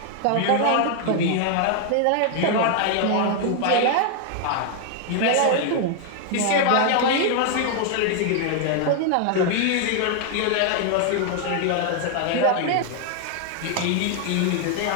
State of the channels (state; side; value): different; both; correlation 0.00